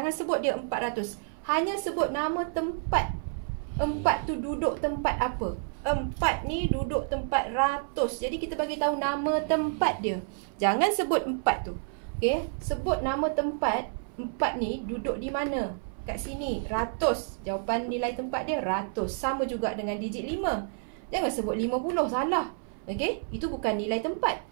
sebut dia 400. Hanya sebut nama tempat. 4 tu duduk tempat apa? 4 ni duduk tempat ratus. Jadi kita bagi tahu nama tempat dia. Jangan sebut 4 tu. Okey, sebut nama tempat. 4 ni duduk di mana? Kat sini. Ratus. Jawapan nilai tempat dia ratus. Sama juga dengan digit 5. Jangan sebut 50. Salah. Okey, itu bukan nilai tempat.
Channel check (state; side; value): silent; left; 58 dB below the other